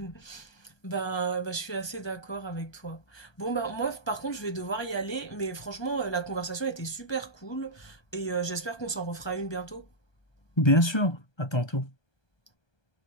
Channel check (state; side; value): late; right; 1.3 ms